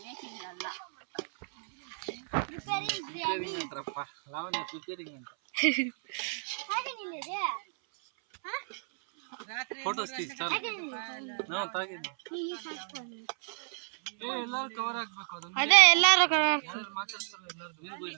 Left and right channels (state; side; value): silent; left; 57 dB below the other